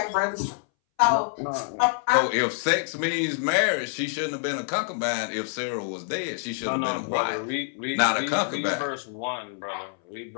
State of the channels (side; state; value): right; silent; 61 dB below the other